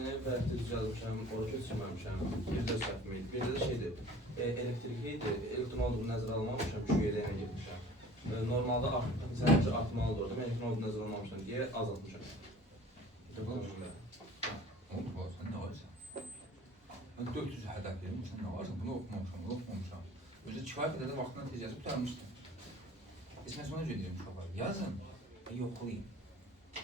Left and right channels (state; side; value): normal; both; correlation 0.46